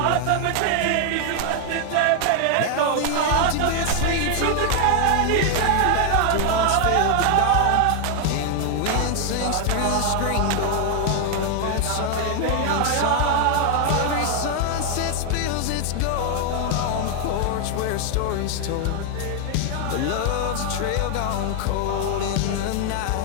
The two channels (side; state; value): both; different; correlation 0.00